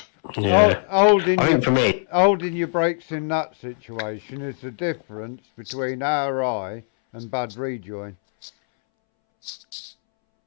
yeah, Holding I think for me, holding your brakes in that situation is the difference between RI and bad rejoin.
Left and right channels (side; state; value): right; silent; 64 dB below the other